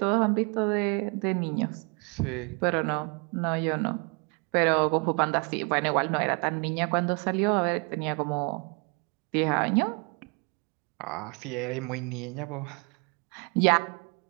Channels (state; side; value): quieter; left; 33.8 dB